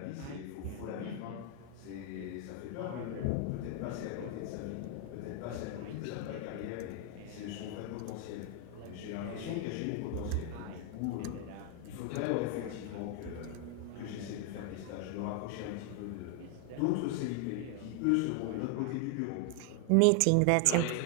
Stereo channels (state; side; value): different; both; correlation 0.00